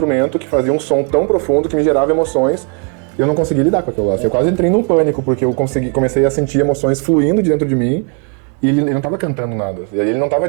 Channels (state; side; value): quieter; left; 38.7 dB